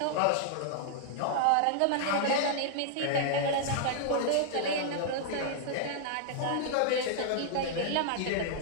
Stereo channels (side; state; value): both; different; correlation -0.01